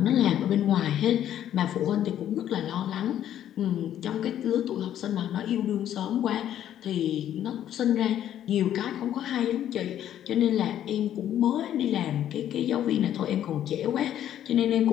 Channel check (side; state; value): right; quieter; 11.0 dB